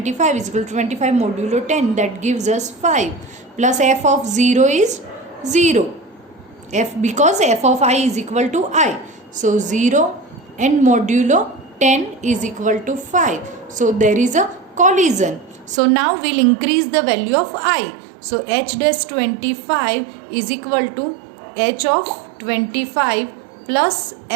is equal to 25 modulo 10, that gives us 5, plus f of 0 is 0, because f of I is equal to I, so 0 and modulo 10 is equal to 5, so there is a collision. So now we'll increase the value of I, so h dash 25 is equal to h of 25 plus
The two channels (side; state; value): left; drops out; at 15.8 s